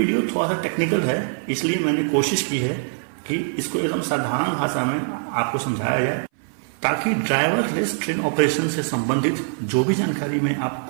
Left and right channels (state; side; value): silent; left; 59 dB below the other